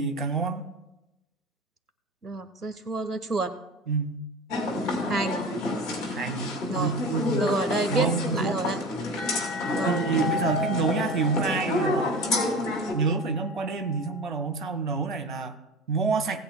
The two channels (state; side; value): normal; both; correlation 0.32